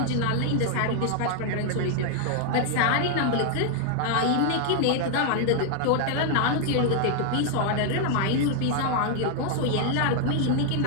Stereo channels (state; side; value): different; both; correlation 0.00